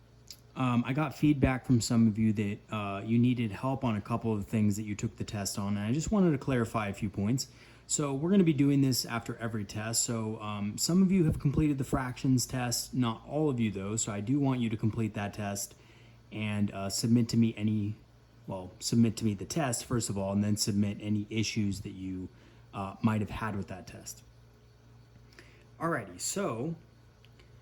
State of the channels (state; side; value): identical; both; correlation 1.00